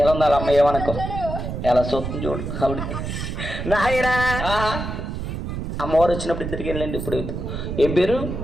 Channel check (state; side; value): noise; right; rumble, 5 dB below the sound